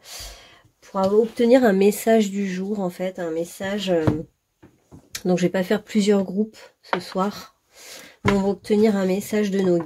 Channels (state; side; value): identical; both; correlation 1.00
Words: pour obtenir un message du jour en fait, un message, donc je vais pas faire plusieurs groupes ce soir, mais on va obtenir un message de nos